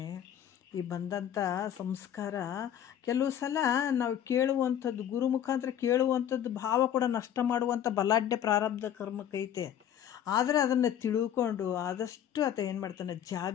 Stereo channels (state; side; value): quieter; right; 10.1 dB